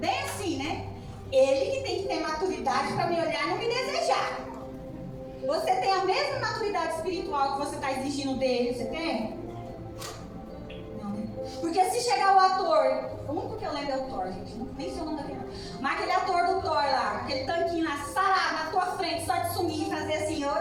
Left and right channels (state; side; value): identical; both; correlation 1.00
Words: assim, né? Ele que tem que ter maturidade para me olhar e não me desejar. Você tem a mesma maturidade espiritual que você está exigindo dele, você tem? Não, né? Porque se chegar o ator, o único que eu lembro é o Thor, gente, nem sei o nome daquele. Mas aquele ator do Thor lá, aquele tanquinho lá, sarado na tua frente, só de sumir e fazer assim,